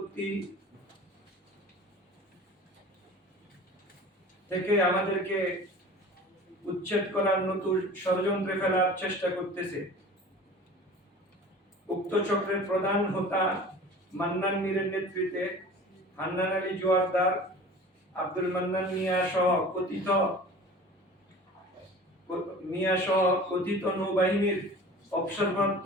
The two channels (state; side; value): normal; both; correlation 0.41